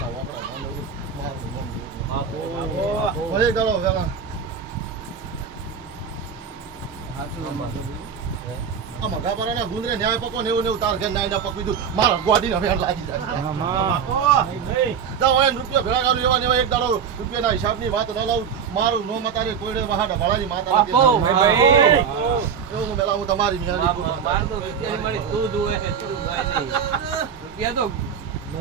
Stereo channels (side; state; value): left; quieter; 7.0 dB